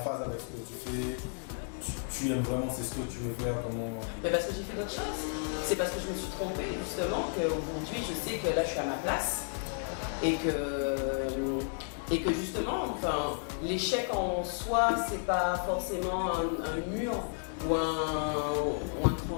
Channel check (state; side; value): silent; right; 56 dB below the other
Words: avec ce que tu fais, tu aimes vraiment, c'est ce que tu veux faire, comment... Mais parce que j'ai fait d'autres choses, c'est parce que je me suis trompée justement qu'aujourd'hui je sais que là je suis à ma place et que justement, enfin, l'échec en soi, c'est pas forcément un mur ou un